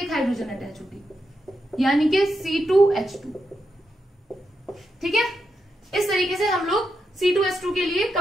हाइड्रोजन अटैच होगी, यानी कि C2H2, ठीक है। इस तरीके से हम लोग C2H2 के लिए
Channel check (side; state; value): both; normal; correlation 0.85